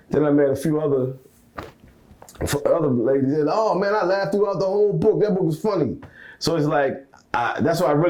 Then I met a few other ladies said, "Oh man, I laughed throughout the whole book. That book was funny." So it's like that's why I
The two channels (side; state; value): both; identical; correlation 1.00